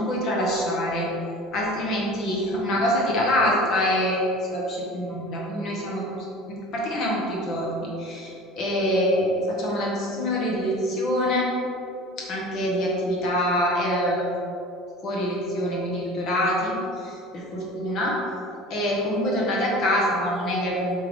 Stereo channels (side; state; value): both; normal; correlation 0.40